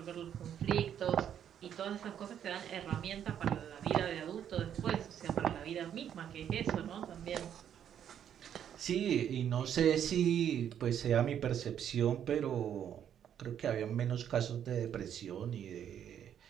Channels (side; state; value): left; quieter; 9.4 dB